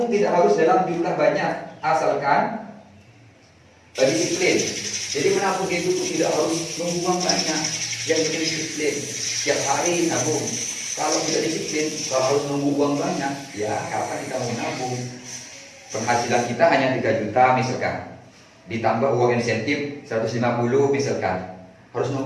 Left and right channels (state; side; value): identical; both; correlation 1.00